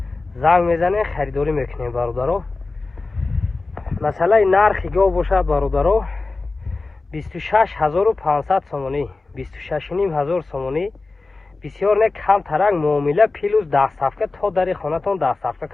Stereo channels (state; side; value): quieter; right; 3.6 dB